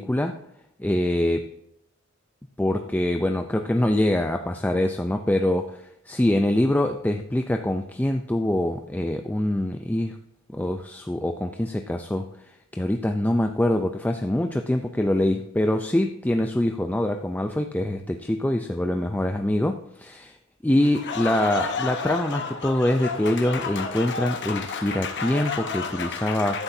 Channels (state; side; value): normal; both; correlation 0.86